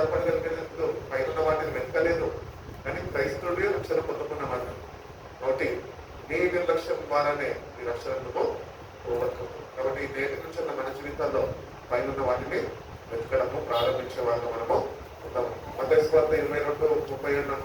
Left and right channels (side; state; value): both; identical; correlation 1.00